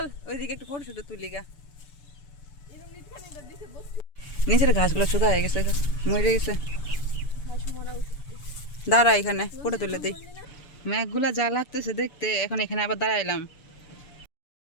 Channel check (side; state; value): right; late; 7.0 ms